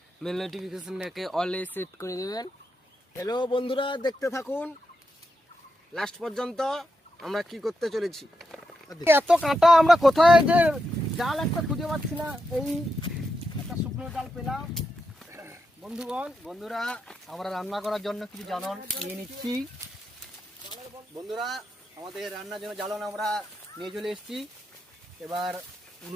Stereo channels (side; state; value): both; normal; correlation 0.85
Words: বেল নোটিফিকেশনটাকে অলে সেট করে দেবেন। হ্যালো বন্ধুরা, দেখতে থাকুন লাস্ট পর্যন্ত আমরা কি করতে চলেছি। এত কাঁটা আমরা কোথায় যে জাল একটা খুঁজে পাচ্ছি না, এই একটা শুকনো জাল পেলাম। বন্ধুরা আমরা রান্না করার জন্য কিছু জ্বালন নিয়ে নিচ্ছি। বন্ধুরা আমাদের রান্নার জন্য জ্বালন আমরা নিয়ে চলে এসেছি। এবার